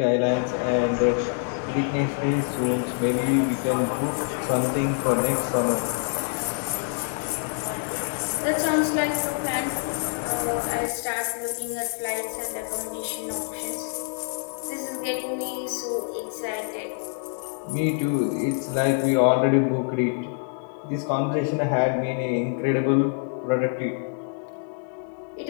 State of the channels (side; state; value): right; silent; 57 dB below the other